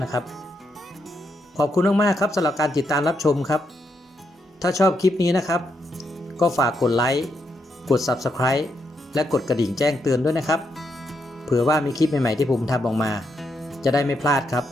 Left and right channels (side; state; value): both; normal; correlation 0.80